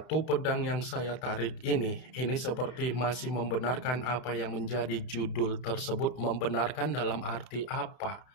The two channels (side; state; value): right; late; 32 ms